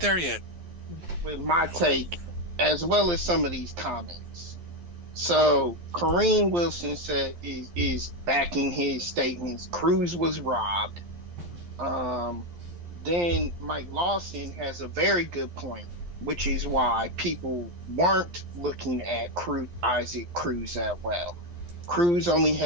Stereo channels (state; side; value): late; left; 11 ms